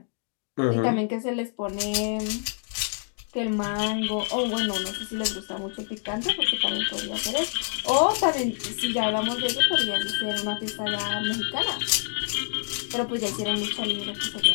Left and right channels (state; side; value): silent; right; digital silence